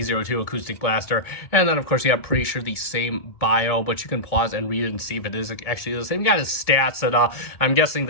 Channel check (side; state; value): right; late; 1.7 ms